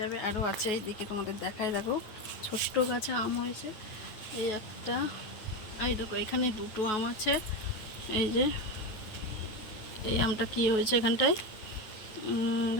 আরও আছে এইদিকে, তোমাদের দেখাই। দেখো ছোট্ট গাছে আম হয়েছে। এই একটা, এই দেখো এখানে দুটো আম আছে। এই যে এই আমটা কি হয়েছে এখানটায়,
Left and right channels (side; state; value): right; late; 9.3 ms